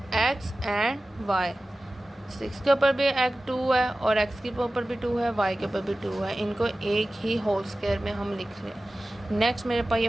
x एंड y, 6 के ऊपर भी एक 2 है और x के ऊपर भी 2 है, y के ऊपर भी 2 है, इनको एक ही होल स्क्वायर में हम लिख रहे हैं। नेक्स्ट मेरे पास ये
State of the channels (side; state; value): both; normal; correlation 0.96